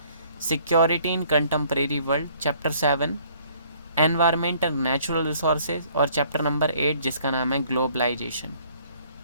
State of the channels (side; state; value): both; inverted; correlation -0.60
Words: security in contemporary world. Chapter 7 environment and natural resources, और चैप्टर नंबर 8 जिसका नाम है ग्लोबलाइजेशन।